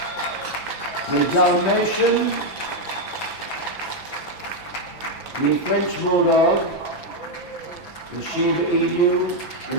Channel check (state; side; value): late; right; 5.9 ms